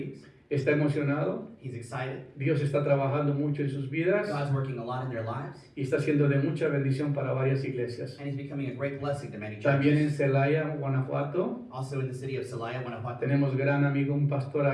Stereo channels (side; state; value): both; identical; correlation 1.00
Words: Está emocionado. He's excited. Dios está trabajando mucho en sus vidas God's working a lot in their lives, y está siendo de mucha bendición para varias iglesias. and he's becoming a great blessing to many También en churches. Celaya, Guanajuato, Also in the city of Celaya, Guanajuato, tenemos gran amigo, un pastor